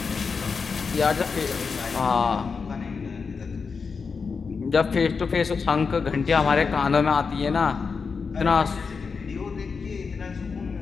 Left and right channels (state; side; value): quieter; right; 5.2 dB